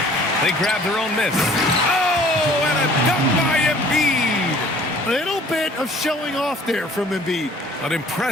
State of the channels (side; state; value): both; normal; correlation 0.53